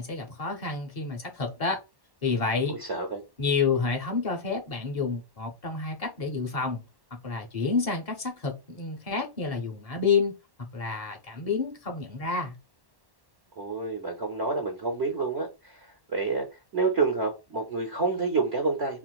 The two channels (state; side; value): late; left; 1.1 ms